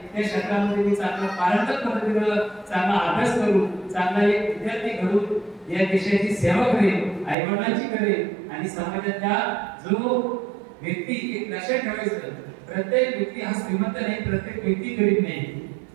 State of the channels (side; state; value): left; drops out; at 7.4 s